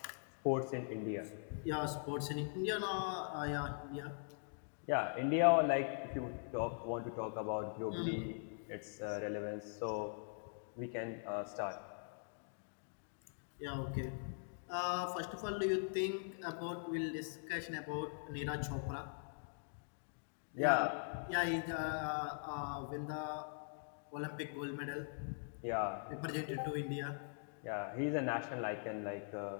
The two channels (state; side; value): silent; right; digital silence